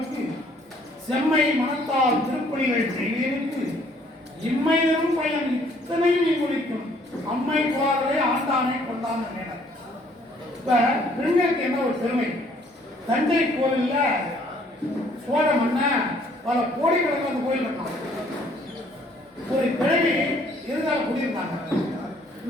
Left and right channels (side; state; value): both; normal; correlation 0.62